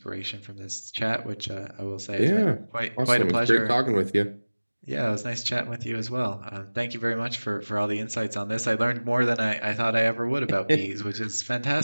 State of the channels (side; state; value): both; inverted; correlation -1.00